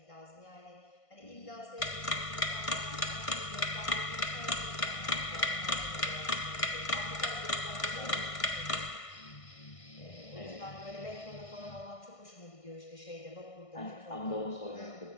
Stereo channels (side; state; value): right; late; 1.6 ms